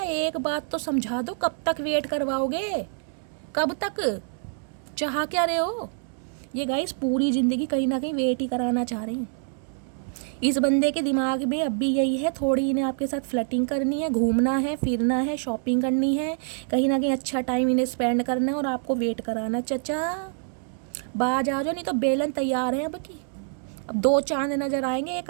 एक बात तो समझा दो, कब तक वेट करवाओगे, कब तक, चाह क्या रहे हो। ये गाइस पूरी ज़िंदगी कहीं ना कहीं वेट ही कराना चाह रहे हैं। इस बंदे के दिमाग में अब भी यही है, थोड़ी इन्हें आपके साथ फ्लर्टिंग करनी है, घूमना है, फिरना है, शॉपिंग करनी है, कहीं ना कहीं अच्छा टाइम इन्हें स्पेंड करना है और आपको वेट कराना। चचा बाज आ जाओ, नहीं तो बेलन तैयार है अब की। अब 2 चांद नजर आएंगे, एक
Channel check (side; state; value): left; silent; digital silence